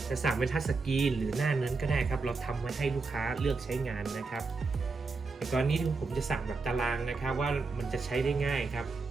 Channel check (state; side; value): quieter; left; 4.0 dB